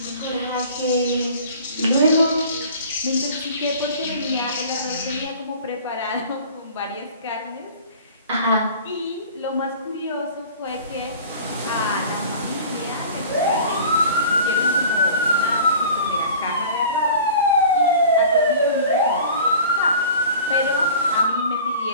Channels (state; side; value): inverted; both; correlation -0.43